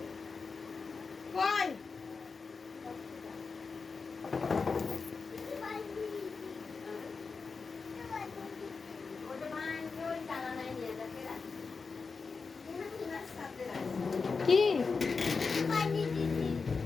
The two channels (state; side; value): quieter; right; 4.7 dB